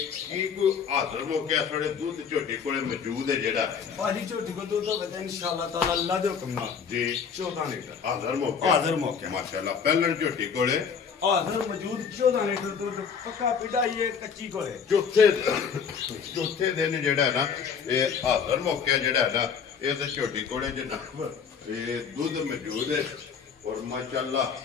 ਕੀ ਕੋਈ ਹਾਜ਼ਰ ਹੋ ਗਿਆ ਸਾਡੇ ਦੁੱਧ ਝੋਟੀ ਕੋਲੇ ਮੌਜੂਦ ਹੈ ਜਿਹੜਾ ਭਾਜੀ ਝੋਟੀ ਕੋ ਦੁੱਧ ਹੋਵੇ ਤਾਂ ਇਨਸ਼ਾਅੱਲਾ ਤਾਲਾ ਅੱਲਾ ਦੇ ਹੁਕਮ ਨਾਲ ਜੀ 14 ਲੀਟਰ ਹਾਜ਼ਰ ਮੌਕੇ ਹਾਜ਼ਰ ਮੌਕੇ। ਮਾਸ਼ਾਅੱਲਾ ਪਹਿਲਣ ਝੋਟੀ ਕੋਲੇ ਹਾਜ਼ਰ ਮੌਜੂਦ 14 ਲੀਟਰ ਦੁੱਧ ਪੱਕਾ ਪਿਢਾਈ ਹੈ ਕੱਚੀ ਕੋਲੇ ਚੌਥੇ ਦਿਨ ਜਿਹੜਾ ਹੈ ਨਾ ਇਹ ਹਾਜ਼ਰ ਮੌਕੇ ਜਿਹੜਾ ਹੈ ਨਾ ਇਹ ਤੇ ਝੋਟੀ ਕੋਲੇ ਜਨਾਬ ਇਹ ਦੁੱਧ ਮੌਜੂਦ ਹੈ ਔਰ ਮਾਸ਼ਾਅੱਲਾ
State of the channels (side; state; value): right; quieter; 6.6 dB